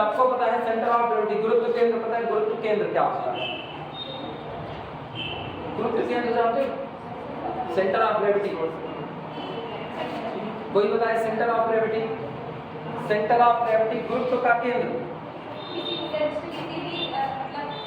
पता है सेंटर ऑफ ग्रेविटी, गुरुत्व केंद्र पता है, गुरुत्व केंद्र क्या होता है। गुरुत्व केंद्र जानते हो, सेंटर ऑफ ग्रेविटी। कोई बताए centre of gravity, centre of gravity गुरुत्व का केंद्र।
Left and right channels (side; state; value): both; identical; correlation 1.00